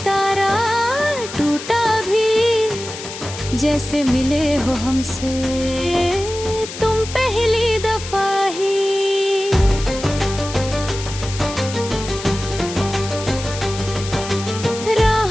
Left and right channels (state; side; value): noise; left; hiss, 10 dB below the sound